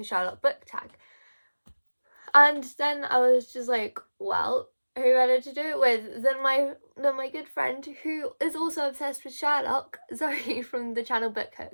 Sherlock book tag? And then I was just like, well, who better to do it with than my good friend who is also obsessed with Sherlock, Zoe from the channel Book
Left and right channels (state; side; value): inverted; both; correlation -1.00